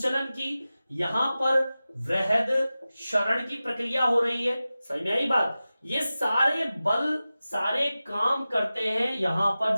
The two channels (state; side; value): inverted; both; correlation -0.95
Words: की, यहां पर वृहद क्षरण की प्रक्रिया हो रही है। समझ में आई बात? ये सारे बल सारे काम करते हैं यहां पर